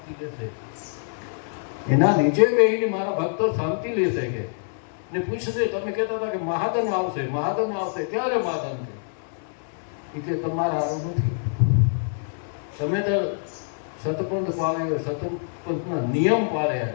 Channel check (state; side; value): silent; right; digital silence